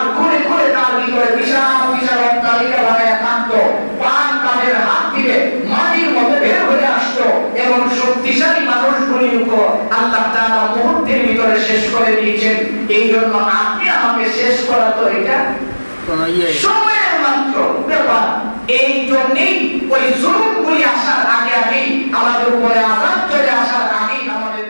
ঘুরে ঘুরে তার ভিতরে বিশাল বিশাল অট্টালিকা বানায় থাকতো, পান তাদের হাত থেকে মাটির মধ্যে বের হয়ে আসতো, এবং শক্তিশালী মানুষগুলির উপর আল্লাহ তাআলা মুহূর্তের ভিতরে শেষ করে দিয়েছেন। এই জন্য আপনি আমাকে শেষ করা তো এটা সময়ের মাত্র ব্যাপার। এই জন্যই ওই জুলুমগুলি আসার আগে আগেই আমাদের উপরে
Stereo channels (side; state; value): both; inverted; correlation -1.00